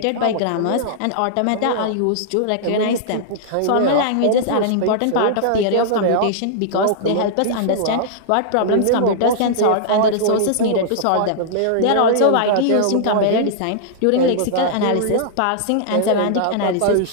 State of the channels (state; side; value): different; both; correlation -0.02